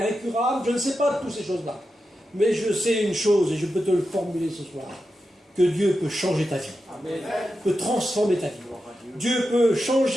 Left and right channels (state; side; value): normal; both; correlation 0.90